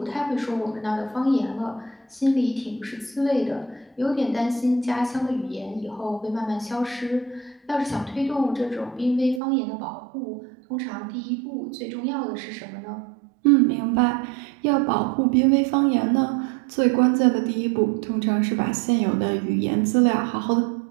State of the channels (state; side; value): drops out; left; at 9.4 s